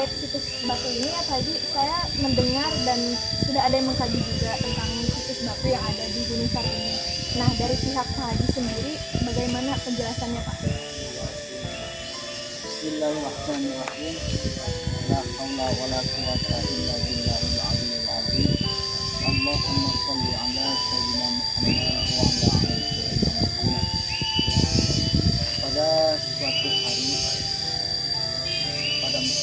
situs batu ini ya Pak Haji, saya mendengar dan sudah ada yang mengkaji juga tentang situs batu yang ada di Gunung Sari ini. Nah, dari pihak Pak Haji sendiri, bagaimana penjelasannya Pak? Bismillahirrahmanirrahim. La haula wala quwata illa billahil aliyyil azim. Allahumma shalli ala sayyidina Muhammad wa ala ali sayyidina Muhammad. Pada suatu hari pada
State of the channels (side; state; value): both; identical; correlation 1.00